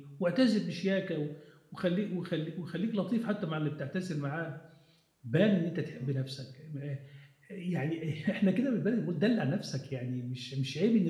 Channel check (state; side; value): identical; both; correlation 1.00